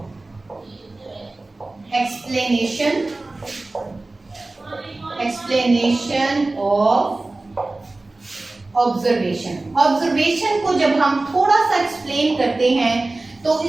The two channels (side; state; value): left; quieter; 3.1 dB